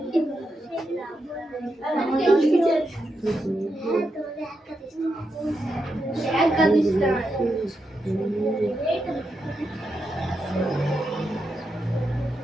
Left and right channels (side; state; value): both; normal; correlation 0.85